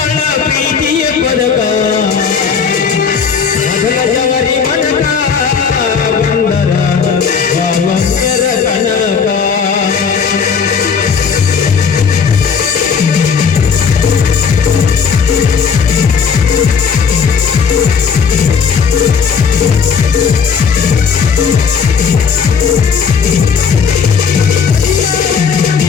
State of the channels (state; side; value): quieter; right; 6.2 dB